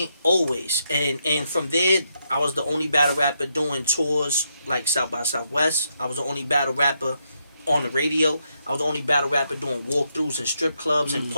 Always. And from there, I was the only battle rapper doing tours like South by Southwest. I was the only battle rapper on the radio. I was the only battle rapper doing walkthroughs and strip clubs and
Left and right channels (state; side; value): inverted; both; correlation -0.80